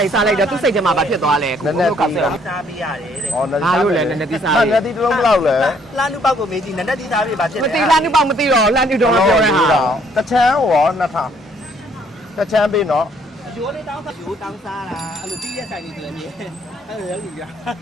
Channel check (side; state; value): both; normal; correlation 0.65